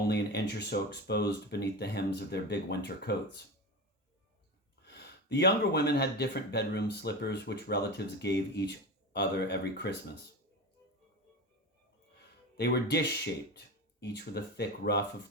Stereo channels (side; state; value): both; normal; correlation 0.24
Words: an inch or so exposed beneath the hems of their big winter coats. The younger women had different bedroom slippers, which relatives gave each other every Christmas. They were dish-shaped, each with a thick ruff